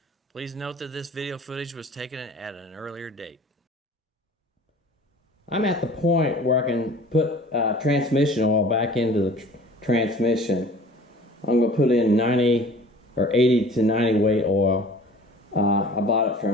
Please note that this video footage was taken at an earlier date. I'm at the point where I can put transmission oil back into the transmission. I'm going to put in 90 or 80 to 90 weight oil. I bought it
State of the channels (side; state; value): both; normal; correlation 0.46